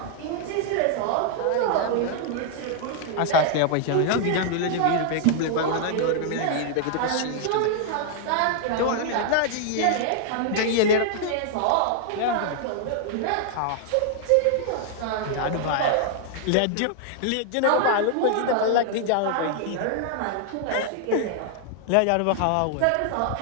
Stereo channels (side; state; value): both; different; correlation -0.01